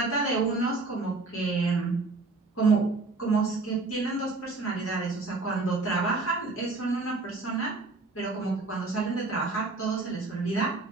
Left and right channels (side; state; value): left; quieter; 3.5 dB